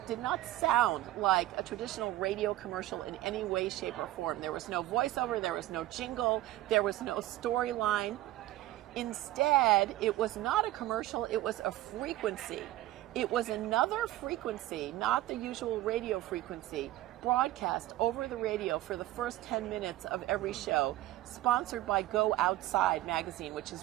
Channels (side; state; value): left; quieter; 15.7 dB